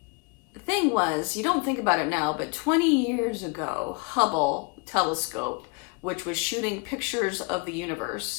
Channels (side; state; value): right; quieter; 30.8 dB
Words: thing was, you don't think about it now, but 20 years ago, Hubble telescope, which was shooting pictures of the